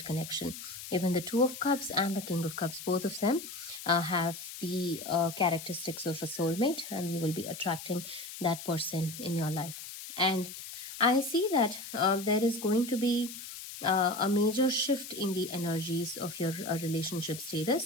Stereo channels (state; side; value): noise; left; hiss, 11 dB below the sound